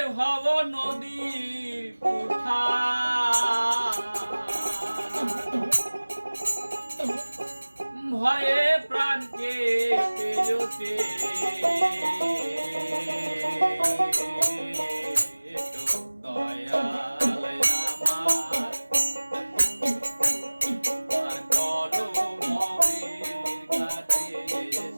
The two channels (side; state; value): both; inverted; correlation -1.00